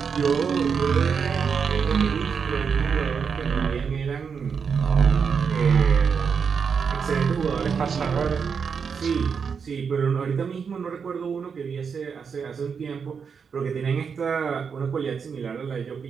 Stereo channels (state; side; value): quieter; left; 6.2 dB